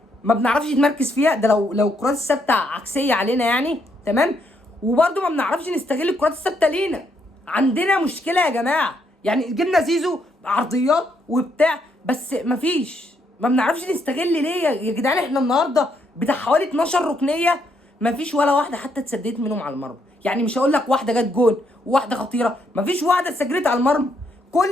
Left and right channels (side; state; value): both; normal; correlation 0.75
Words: ما بنعرفش نتمركز فيها، ده لو الكرات الثابته عكسيه علينا يعني، تمام. وبرده ما بنعرفش نستغل الكرات الثابته لينا. عندنا مشكله يا جماعه. يعني جبنا زيزو عرضيات وبتاع، بس ما بنعرفش نستغل ليه يا جدعان؟ احنا النهارده بتاع حوالي 12 ركنيه، ما فيش ولا واحده حتى اتسددت منهم على المرمى. يعني مش هقول لك واحده جت جون وواحده خطيره، ما فيش واحده اتسجلت على المرمى.